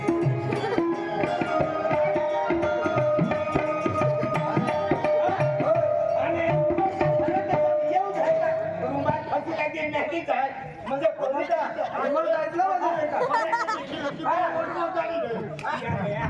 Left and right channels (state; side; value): identical; both; correlation 1.00